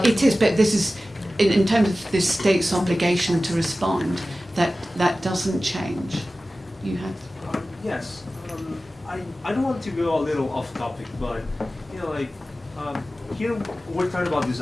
It is, but this is, in terms of the state's obligation to respond, that doesn't change. You have? Yes. I don't want to go a little off topic, but you know, like here we're talking about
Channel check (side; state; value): both; normal; correlation 0.96